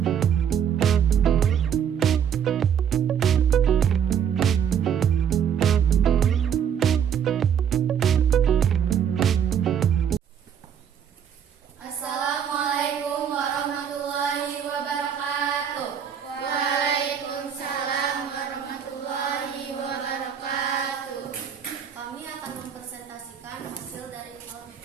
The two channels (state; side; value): quieter; left; 8.2 dB